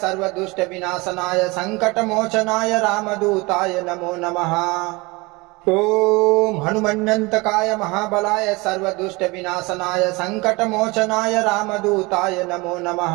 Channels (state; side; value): quieter; left; 24.7 dB